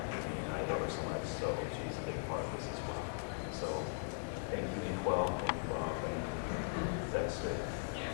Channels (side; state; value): right; silent; 51 dB below the other